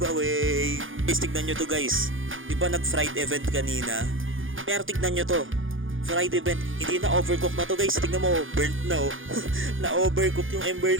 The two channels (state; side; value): late; left; 0.58 ms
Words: Guys, tignan nyo to guys. Di ba nag-fried event kanina? Pero tignan nyo to. Fried event, hindi na overcook na to guys. Tingnan mo, burnt na, oh. Na overcook yung ember